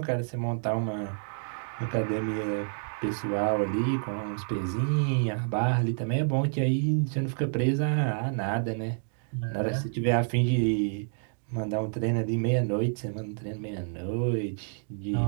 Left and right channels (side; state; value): left; silent; digital silence